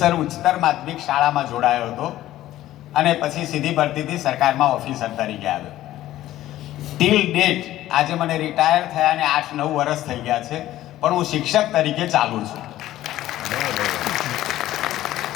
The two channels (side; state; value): right; quieter; 14.3 dB